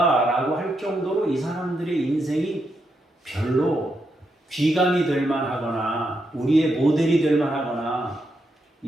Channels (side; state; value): both; normal; correlation 0.82